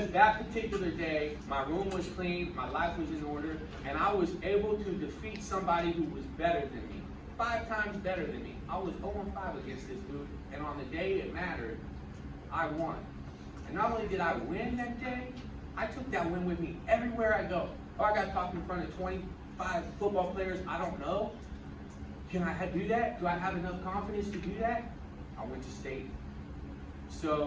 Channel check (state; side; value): identical; both; correlation 1.00